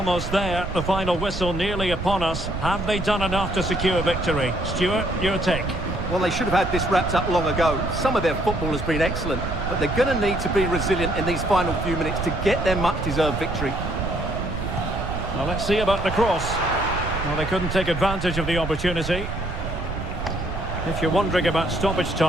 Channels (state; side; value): noise; right; rumble, 6 dB below the sound